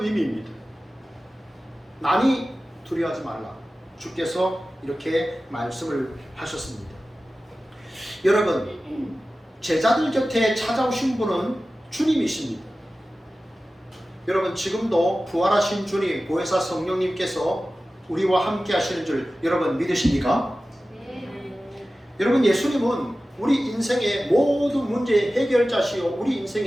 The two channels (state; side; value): normal; both; correlation 0.95